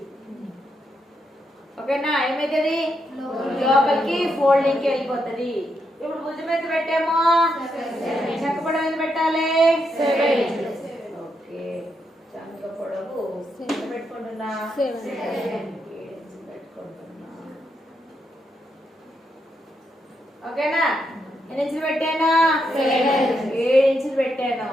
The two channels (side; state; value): both; normal; correlation 0.81